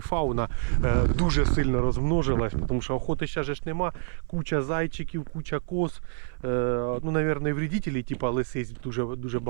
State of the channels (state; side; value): silent; left; 57 dB below the other